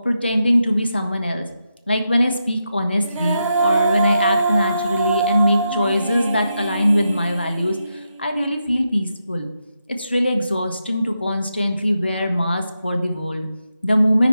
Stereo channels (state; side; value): inverted; both; correlation -0.85